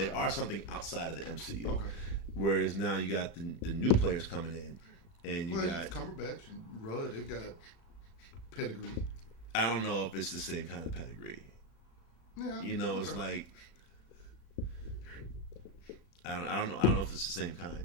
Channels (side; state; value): right; late; 36 ms